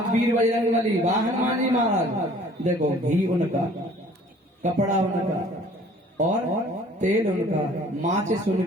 वीर बजरंग बली, वाह हनुमान जी महाराज, देखो घी उनका, कपड़ा उनका और तेल उनका, माचिस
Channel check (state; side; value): normal; both; correlation 0.53